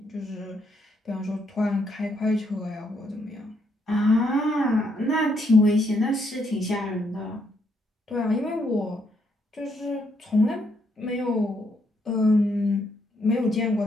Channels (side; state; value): both; normal; correlation 0.74